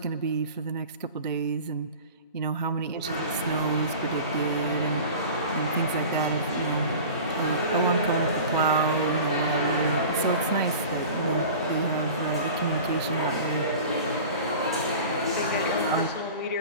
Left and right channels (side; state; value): both; inverted; correlation -0.38